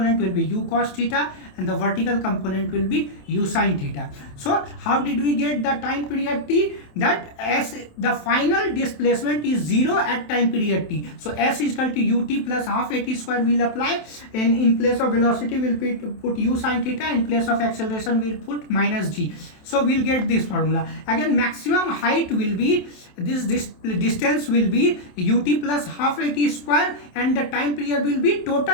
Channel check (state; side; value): late; right; 27 ms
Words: will be u cos theta and the vertical component will be u sin theta. So how did we get the time period t? That s, the final displacement is 0 at time period t. So s is equal to ut plus half at square will apply, and in place of velocity we'll put u sin theta, in place of acceleration we'll put minus g. So we'll get this formula. Again, maximum height will be this distance will be ut plus half at square, and the time period will be